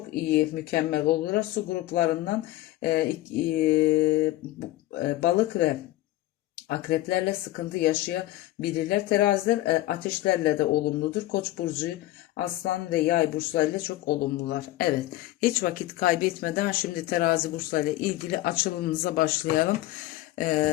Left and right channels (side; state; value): right; quieter; 16.3 dB